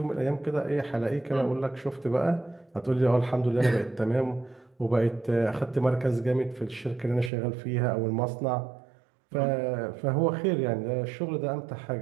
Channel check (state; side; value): drops out; left; at 7.3 s